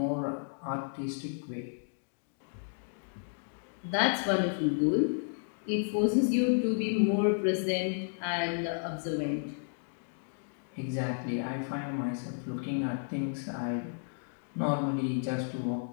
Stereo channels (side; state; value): right; silent; digital silence